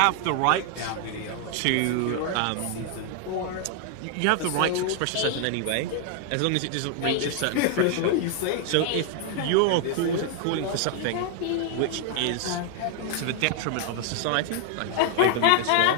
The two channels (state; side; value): different; both; correlation 0.00